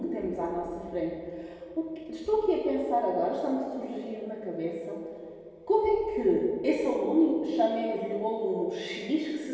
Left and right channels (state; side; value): identical; both; correlation 1.00